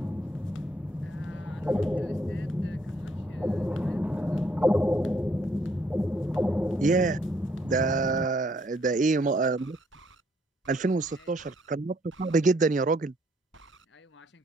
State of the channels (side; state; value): both; normal; correlation 0.67